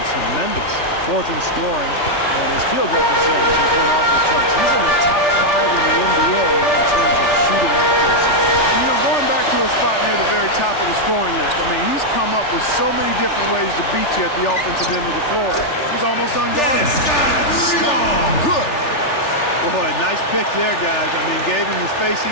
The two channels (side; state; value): right; late; 3.4 ms